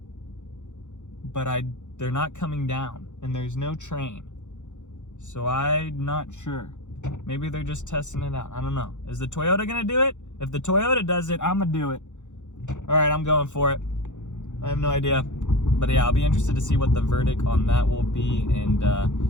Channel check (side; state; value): right; late; 0.85 ms